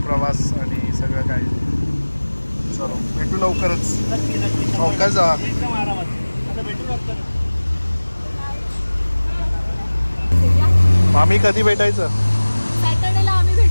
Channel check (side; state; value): both; inverted; correlation -1.00